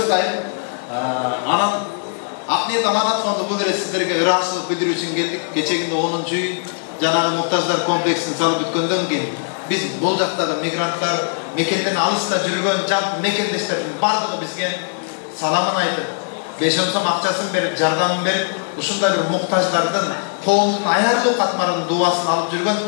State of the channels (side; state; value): right; silent; digital silence